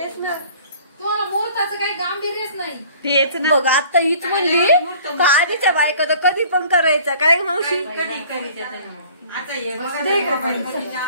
ना, तुम्हाला मुहूर्ताचं काही गांभीर्यच नाही. तेच ना. बघ आता हीच म्हणली का आधीच्या बायका तर कधी पण करायचं काय मावशी. आता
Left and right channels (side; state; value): both; inverted; correlation -0.51